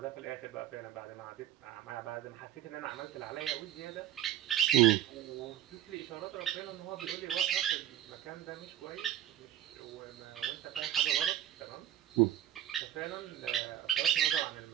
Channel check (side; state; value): left; quieter; 12.1 dB